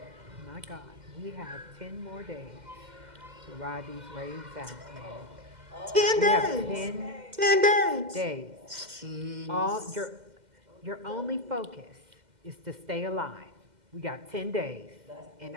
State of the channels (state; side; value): late; left; 2.1 ms